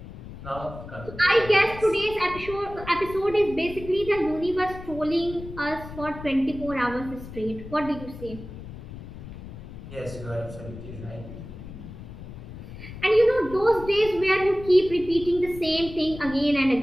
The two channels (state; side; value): noise; left; rumble, 13 dB below the sound